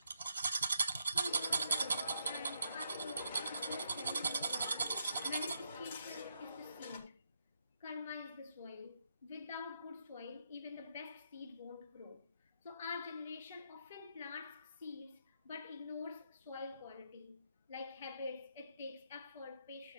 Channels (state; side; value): inverted; both; correlation -0.79